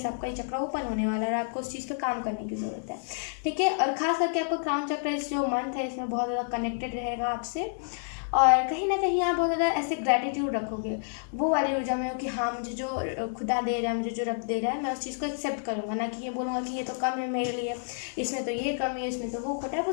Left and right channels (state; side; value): silent; right; digital silence